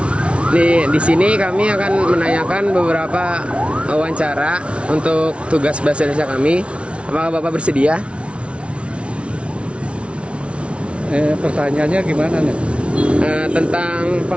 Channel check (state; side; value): late; left; 0.060 ms